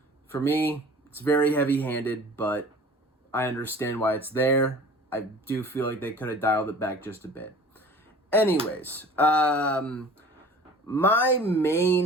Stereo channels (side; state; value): both; normal; correlation 0.44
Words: For me, it's very heavy-handed, but I understand why it's there. I do feel like they could have dialed it back just a bit. Anyways, My